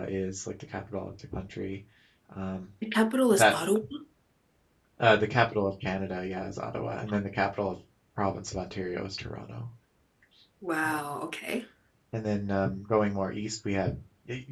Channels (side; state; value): both; identical; correlation 1.00